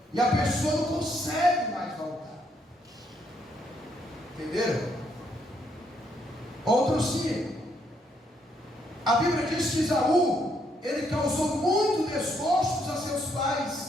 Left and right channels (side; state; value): both; normal; correlation 0.73